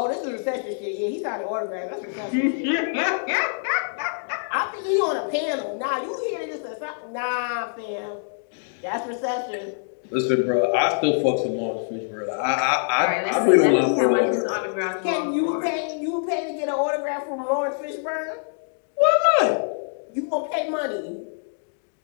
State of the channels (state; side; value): silent; right; digital silence